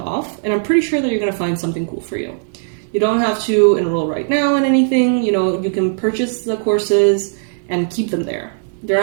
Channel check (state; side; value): silent; left; digital silence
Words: and I'm pretty sure that you're going to find something cool for you. You don't have to enroll right now in anything. You can purchase the courses and keep them there. They're